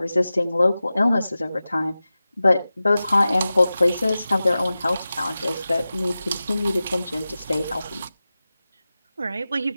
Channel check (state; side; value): inverted; both; correlation -0.95